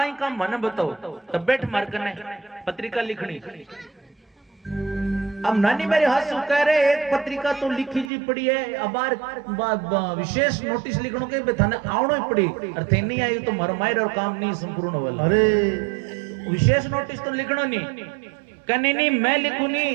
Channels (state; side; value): drops out; left; at 8.1 s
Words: काम मने बताओ तब बैठ मार कने पत्रिका लिखनी। अब नानी मेरे हंसू कह रहे एक पत्रिका तो लिखी जी पड़ी है अब विशेष नोटिस लिखनो के थाने आवणो ही पड़ी और थे नहीं आई तो मरमायर और काम नहीं संपूर्ण वाला। अरे विशेष नोटिस तो लिखनो नहीं कने नहीं मैं लिखू